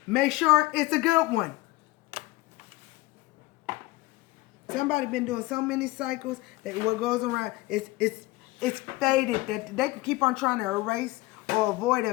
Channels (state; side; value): quieter; right; 20.6 dB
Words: Make sure it's a good one. Somebody been doing so many cycles that what goes around, it's faded that they can keep on trying to erase or avoid